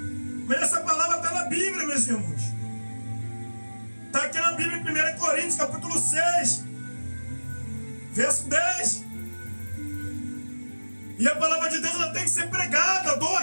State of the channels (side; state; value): both; inverted; correlation -1.00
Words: Mas essa palavra está na Bíblia, meus irmãos. Está aqui na Bíblia, em 1 Coríntios, capítulo 6, verso 10. E a palavra de Deus ela tem que ser pregada,